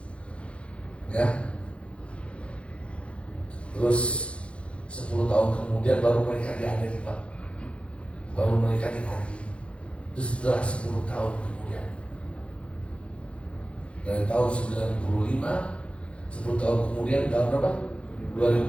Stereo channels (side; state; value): right; late; 0.060 ms